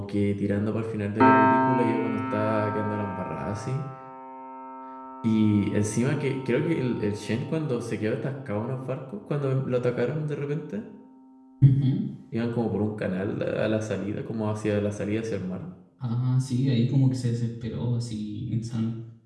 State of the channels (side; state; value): both; identical; correlation 1.00